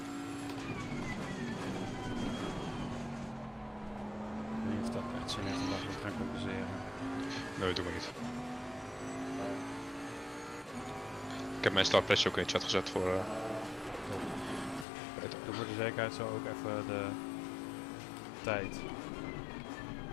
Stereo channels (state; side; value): drops out; right; at 14.9 s